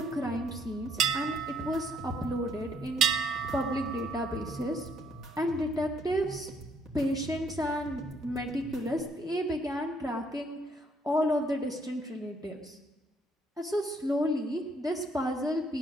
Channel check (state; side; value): normal; both; correlation 0.68